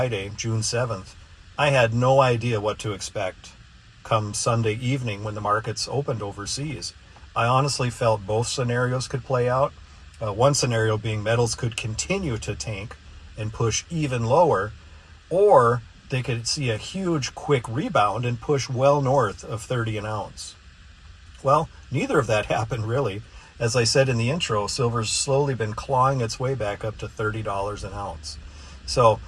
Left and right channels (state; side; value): identical; both; correlation 1.00